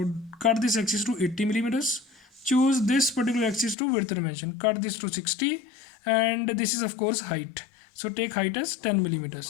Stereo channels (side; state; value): right; drops out; at 3.8 s